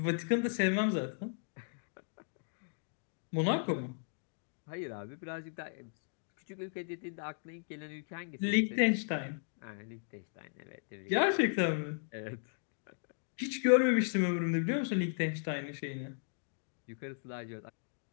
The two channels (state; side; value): silent; right; digital silence